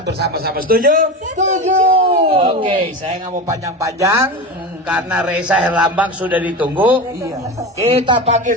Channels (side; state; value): both; normal; correlation 0.24